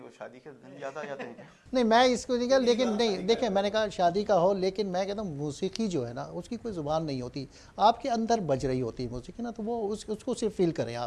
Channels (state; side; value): identical; both; correlation 1.00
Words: वो शादी के दिन याद आ जाते हैं? नहीं, मैं इसको नहीं कहा, लेकिन नहीं देखें, मैंने कहा शादी का हो, लेकिन मैं कहता हूँ मौसीकी जो है ना, उसकी कोई ज़ुबान नहीं होती, आपके अंदर बज रही होती है मौसीकी ना, तो वो उसको सिर्फ फील करें